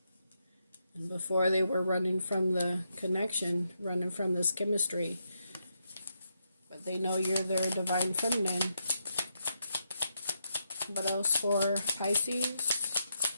And before they were running from the connection, running from this chemistry. But they know you're their Divine Feminine. What else for Pisces?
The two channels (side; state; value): both; inverted; correlation -0.82